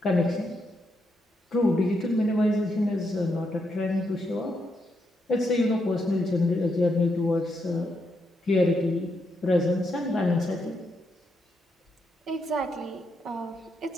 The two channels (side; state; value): both; normal; correlation 0.80